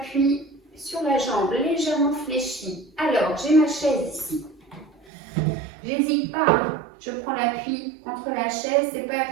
sur la jambe légèrement fléchie. Alors, j'ai ma chaise ici. J'hésite pas, je prends l'appui contre la chaise. C'est pas un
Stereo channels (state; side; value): drops out; left; at 5.1 s